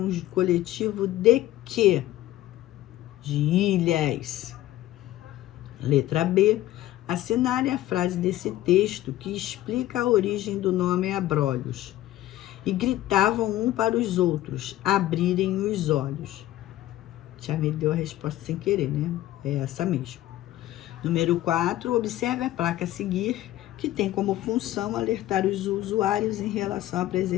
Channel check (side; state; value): right; quieter; 14.7 dB